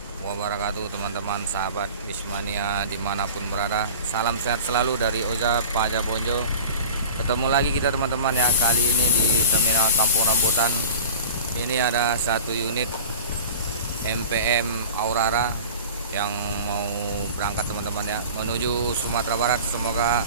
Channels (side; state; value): both; inverted; correlation -0.37